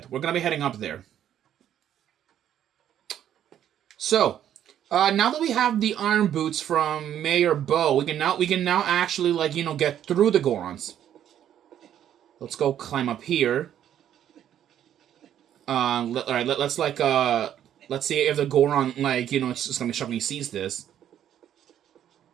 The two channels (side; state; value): left; quieter; 10.5 dB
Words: We're gonna be heading up there. So, now that we have the iron boots from Mayor Bo, we can now actually get through the Gorons. Let's go climb up here. Alright, let's see if the Goron, it's just gonna be shocked when he sees this.